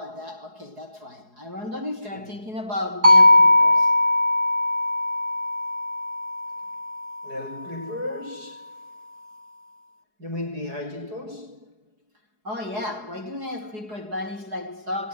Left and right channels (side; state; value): left; late; 4.7 ms